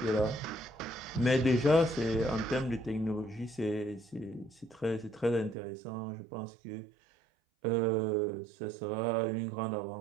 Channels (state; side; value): drops out; left; at 5.6 s